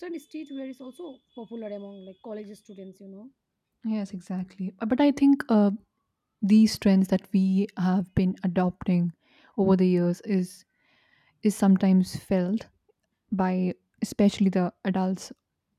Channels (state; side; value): identical; both; correlation 1.00